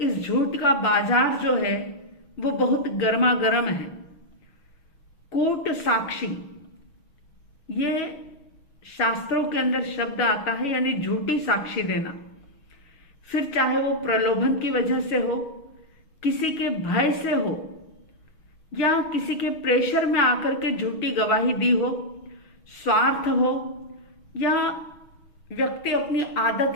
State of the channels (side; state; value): right; late; 6.2 ms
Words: झूठ का बाजार जो है वो बहुत गर्मा गर्म है। कूट साक्षी, ये शास्त्रों के अंदर शब्द आता है, यानी झूठी साक्षी देना। फिर चाहे वो प्रलोभन की वजह से हो, किसी के भय से हो, या किसी के प्रेशर में आकर के झूठी गवाही दी हो, स्वार्थ हो, या व्यक्ति अपनी आदत